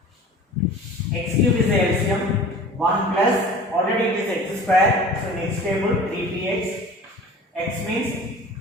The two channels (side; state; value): both; normal; correlation 0.42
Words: x cube is the LCM, 1 plus already it is x square, so next table 3px, x means